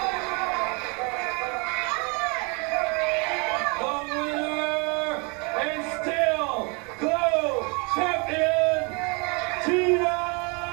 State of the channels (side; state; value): left; quieter; 32.2 dB